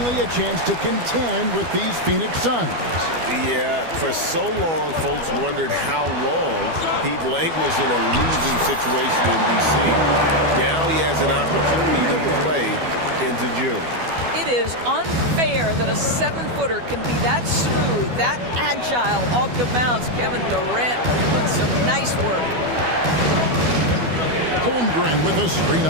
a chance to contend with these Phoenix Suns. Yeah, for so long, folks wondered how long he'd languished in a losing situation in D.C. Now he has an opportunity to play into June. It is unfair that a 7-footer can be that smooth, that agile off the bounce. Kevin Durant doing some nice work. Holmgren with a screen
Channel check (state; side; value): late; left; 12 ms